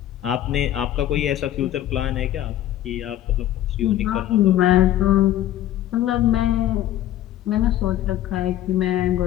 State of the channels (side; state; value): right; quieter; 12.8 dB